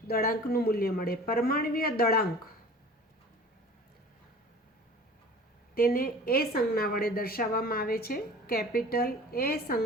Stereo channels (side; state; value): both; normal; correlation 0.43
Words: દળાંકનું મૂલ્ય મળે. પરમાણ્વીય દળાંક તેને એ સંજ્ઞા વડે દર્શાવવામાં આવે છે. કેપિટલ એ